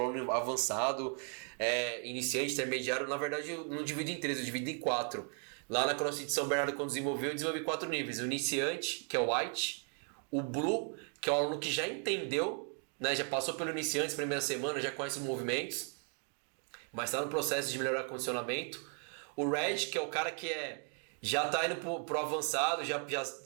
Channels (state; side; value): quieter; left; 38.9 dB